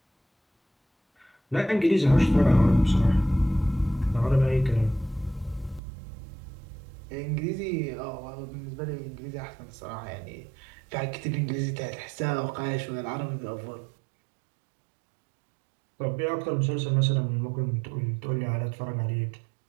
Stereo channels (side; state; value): left; drops out; at 5.8 s